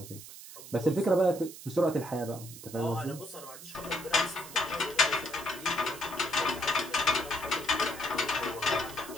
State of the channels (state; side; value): noise; right; hiss, 14 dB below the sound